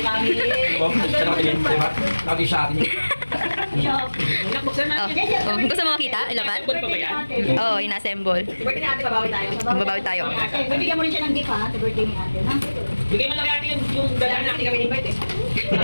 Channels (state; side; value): inverted; both; correlation -1.00